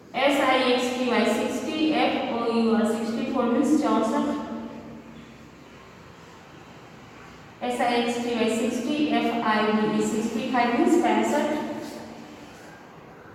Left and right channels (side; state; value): both; identical; correlation 1.00